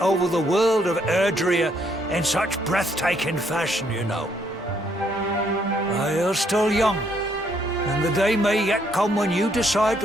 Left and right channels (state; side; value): normal; both; correlation 0.71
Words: the world of Erdrea in such breathtaking fashion, you know. You're still young, and the day may yet come when you decide